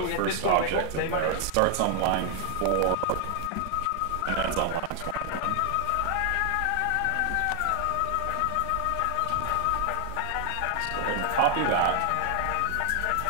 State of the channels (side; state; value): both; different; correlation 0.00